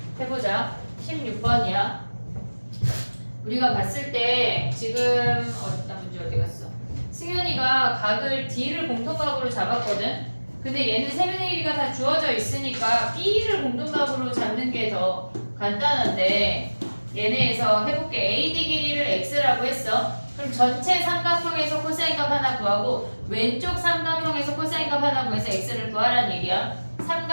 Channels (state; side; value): inverted; both; correlation -1.00